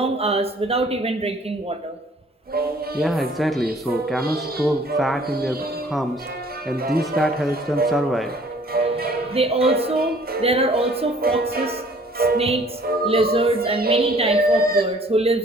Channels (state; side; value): normal; both; correlation 0.56